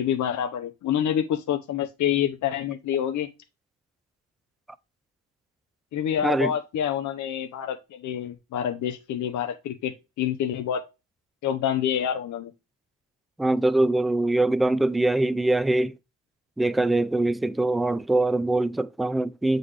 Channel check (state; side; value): normal; both; correlation 0.59